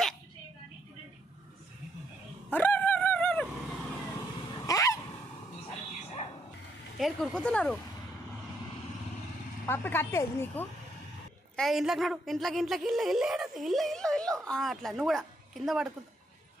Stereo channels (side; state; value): both; normal; correlation 0.75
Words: ఏడు కురుకుతున్నారు పప్పి కట్టేది నీకు ఇంట్లోకి నడు ఇంట్లోకి ఇల్లు ఇల్లు ఏడది ఇల్లు ఇల్లు ఇల్లు అట్లా నువ్వు కూడా కింద పడుకుంటా